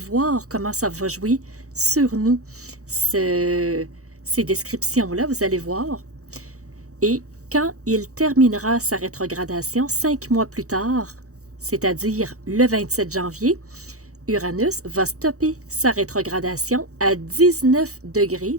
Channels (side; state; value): left; late; 0.65 ms